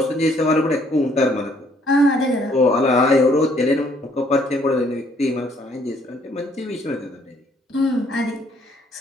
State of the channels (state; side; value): normal; both; correlation 0.65